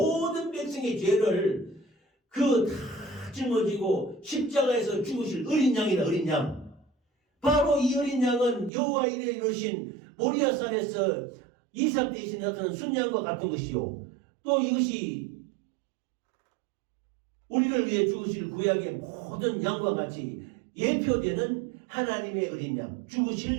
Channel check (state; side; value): drops out; left; at 8.7 s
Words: 백성의 죄를 다 짊어지고 십자가에서 죽으실 어린 양이다. 어린 양. 바로 이 어린 양은 여호와 이레 이르신 모리아산에서 이삭 대신에 나타난 순양과 같은 것이요. 또 이것이 우리를 위해 죽으실 구약의 모든 양과 같이 예표되는 하나님의 어린 양,